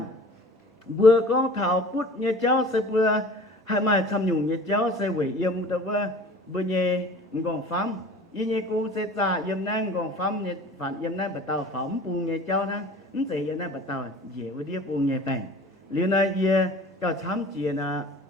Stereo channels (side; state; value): both; normal; correlation 0.44